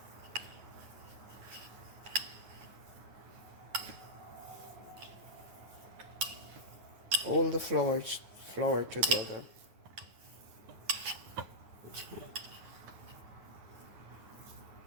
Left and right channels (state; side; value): late; left; 9.5 ms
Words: Hold the flour together.